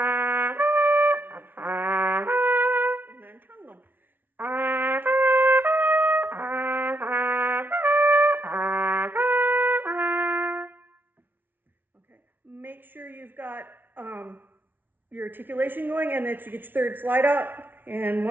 Make sure you've got your articulation going and that you get your third slide out and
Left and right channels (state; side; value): late; left; 0.095 ms